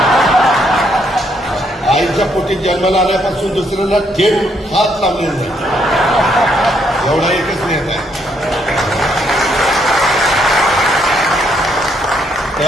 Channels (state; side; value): normal; both; correlation 0.72